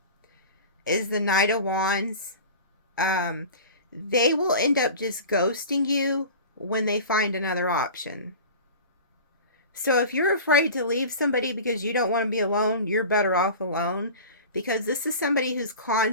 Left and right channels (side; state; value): both; inverted; correlation -0.36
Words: is the Knight of Wands. They will end up just ghosting you when they find another option. So if you're afraid to leave somebody because you don't want to be alone, you're better off alone. Because this is somebody who's